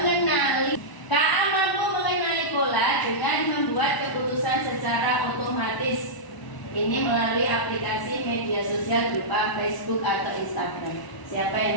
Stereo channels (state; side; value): late; right; 1.0 ms